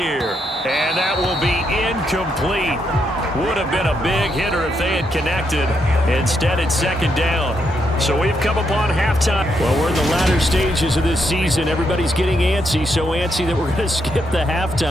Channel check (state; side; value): normal; both; correlation 0.79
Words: And that will be incomplete. Would have been a big hitter if they had connected. Instead, it's second down. So we've come upon halftime. Well, we're in the latter stages of this season. Everybody's getting antsy, so antsy that we're going to skip the